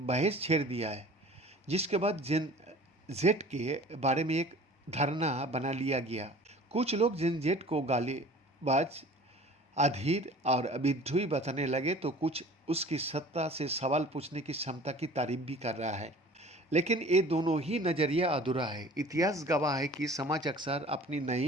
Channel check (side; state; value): both; normal; correlation 0.45